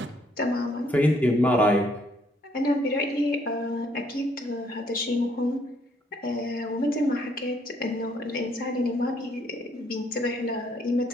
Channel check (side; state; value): both; normal; correlation 0.68